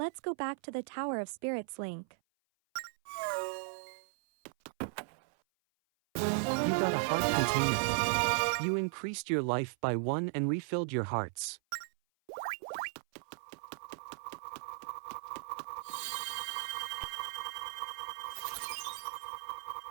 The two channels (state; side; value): silent; left; 53 dB below the other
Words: go back to the Tower of Spirits, Link. You got a heart container. You increased your life by 1 and refilled your hearts.